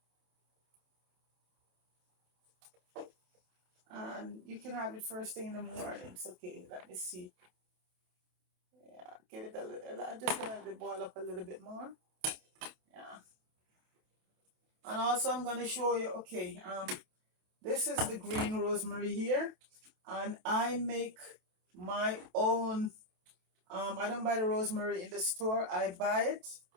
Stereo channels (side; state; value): left; late; 28 ms